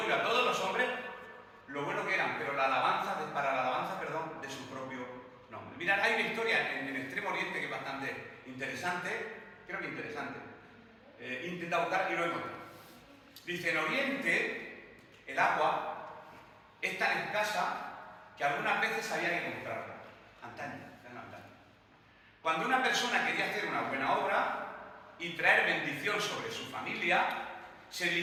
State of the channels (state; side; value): identical; both; correlation 1.00